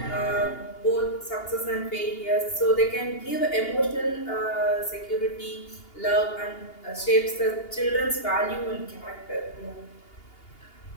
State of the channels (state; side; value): late; right; 2.8 ms